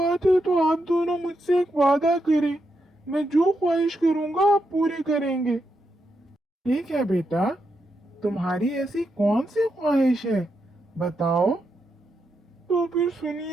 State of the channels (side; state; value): both; normal; correlation 0.83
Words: है तो आप दोनों मुझसे एक वादा करें, मैं जो ख्वाहिश करूंगा आप पूरी करेंगे। ठीक है बेटा, तुम्हारी ऐसी कौन सी ख्वाहिश है, बताओ। तो फिर